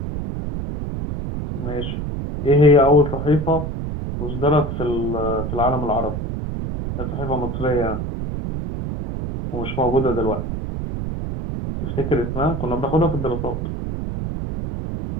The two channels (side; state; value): right; noise; rumble, 4 dB below the sound